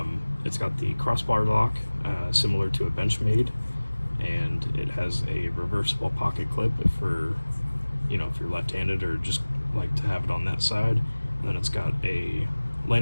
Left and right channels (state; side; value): inverted; both; correlation -1.00